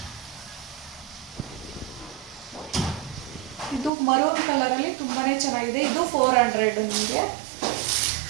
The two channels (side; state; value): left; drops out; at 3.9 s